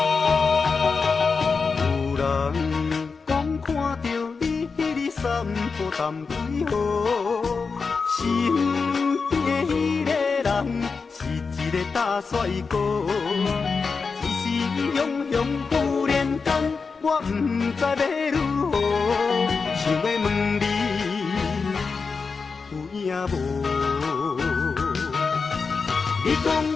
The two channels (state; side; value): quieter; right; 4.9 dB